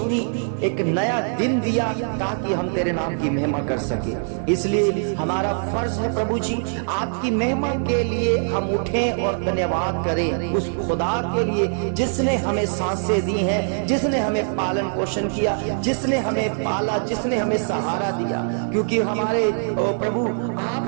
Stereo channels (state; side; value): silent; left; digital silence